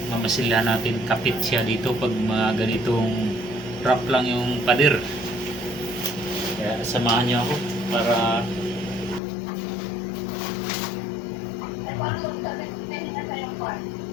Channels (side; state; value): right; drops out; at 9.2 s